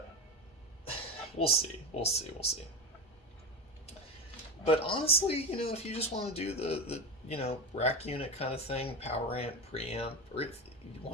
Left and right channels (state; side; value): normal; both; correlation 0.19